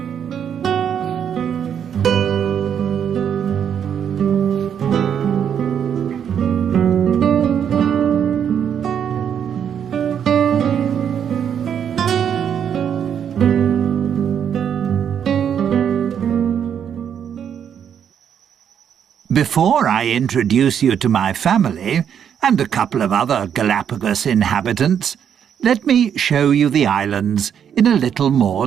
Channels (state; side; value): quieter; left; 8.5 dB